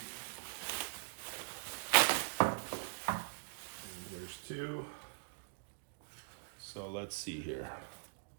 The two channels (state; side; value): silent; left; digital silence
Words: And there's two. So let's see here.